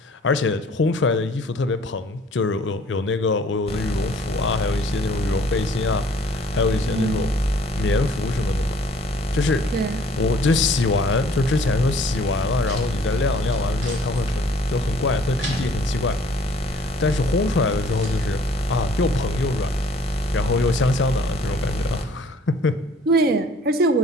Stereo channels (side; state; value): both; normal; correlation 0.56